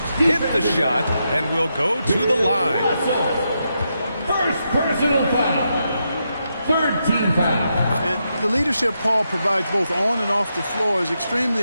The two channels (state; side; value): inverted; both; correlation -0.84